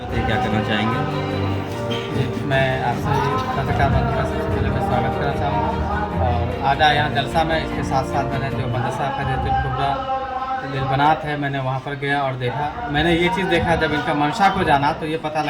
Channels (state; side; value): identical; both; correlation 1.00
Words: क्या करना चाहेंगे? जी, मैं आपसे पत्रकार बंधु का सबसे पहले मैं स्वागत करना चाहूँगा। और आज आया यहाँ जलसा में, इसके साथ साथ मैंने जो मदरसा खैरियतुल कुबरा लिलबनात है, मैंने वहाँ पर गया और देखा। मैंने ये चीज़ देखा, जब इनका मंशा को जाना तो ये पता